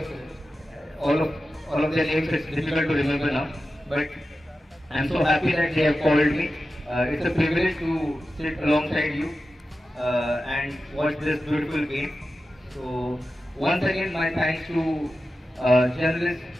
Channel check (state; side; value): normal; both; correlation 0.93